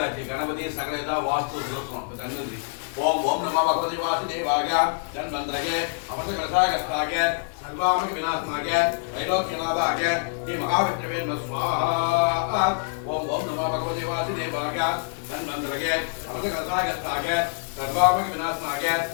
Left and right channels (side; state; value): right; silent; 61 dB below the other